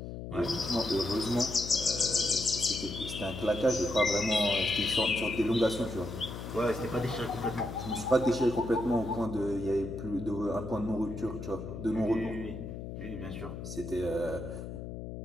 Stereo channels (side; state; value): left; noise; hum, 8 dB below the sound